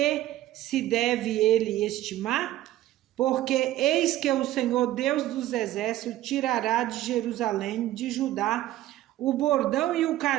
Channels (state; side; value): quieter; left; 14.7 dB